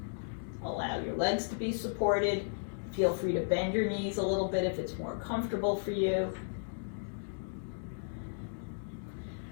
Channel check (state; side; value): silent; right; digital silence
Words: Allow your legs to be supported. Feel free to bend your knees a little bit if it's more comfortable for you.